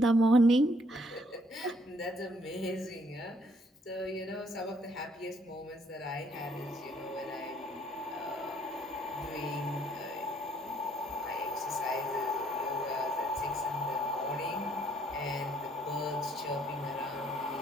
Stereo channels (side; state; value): both; normal; correlation 0.66